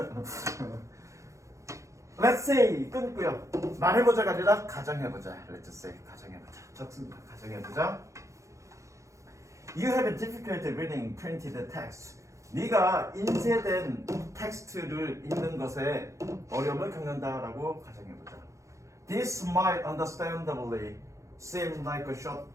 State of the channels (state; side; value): late; left; 0.15 ms